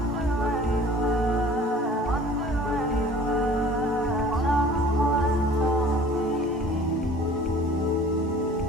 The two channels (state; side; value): normal; both; correlation 0.48